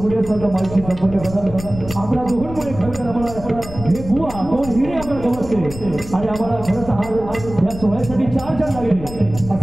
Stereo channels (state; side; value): noise; left; rumble, 12 dB below the sound